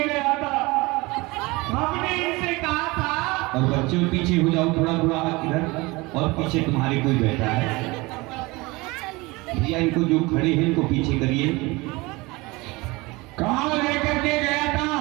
गया था। हमने इनसे कहा था, और बच्चों पीछे हो जाओ थोड़ा थोड़ा इधर, और पीछे तुम्हारे कोई बैठा है भैया, इनको जो खड़े हैं इनको पीछे करिए। कहाँ लेकर के गया था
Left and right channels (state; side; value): quieter; left; 23.3 dB